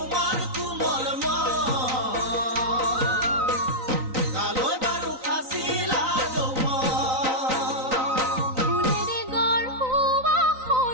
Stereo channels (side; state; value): left; late; 3.9 ms